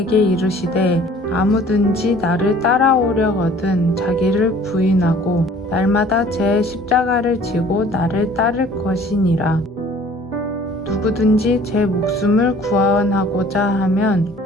이르시되 아무든지 나를 따라오려거든 자기를 부인하고 날마다 제 십자가를 지고 나를 따를 것이니라. 누구든지 제 목숨을 구원하고자 하면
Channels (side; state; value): both; normal; correlation 0.52